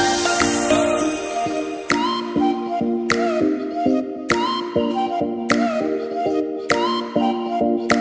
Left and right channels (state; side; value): identical; both; correlation 1.00